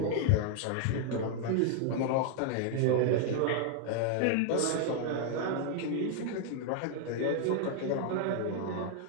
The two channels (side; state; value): both; different; correlation 0.00